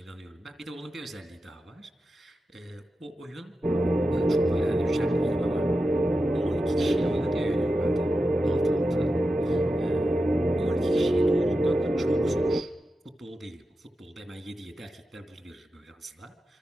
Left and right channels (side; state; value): both; normal; correlation 0.91